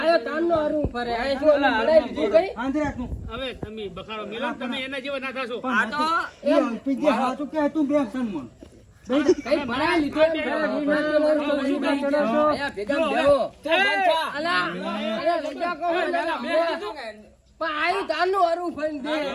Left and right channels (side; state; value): both; identical; correlation 1.00